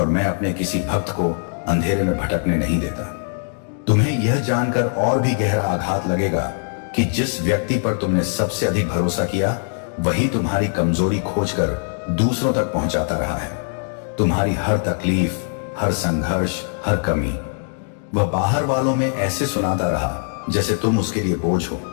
मैं अपने किसी भक्त को अंधेरे में भटकने नहीं देता। तुम्हें यह जानकर और भी गहरा आघात लगेगा कि जिस व्यक्ति पर तुमने सबसे अधिक भरोसा किया वही तुम्हारी कमजोरी खोजकर दूसरों तक पहुंचाता रहा है। तुम्हारी हर तकलीफ, हर संघर्ष, हर कमी वह बाहर वालों में ऐसे सुनाता रहा जैसे तुम उसके लिए बोझ हो,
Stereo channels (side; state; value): right; silent; 58 dB below the other